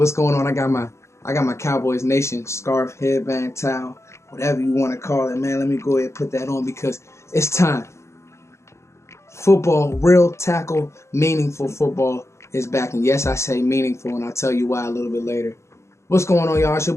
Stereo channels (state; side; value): late; right; 0.14 ms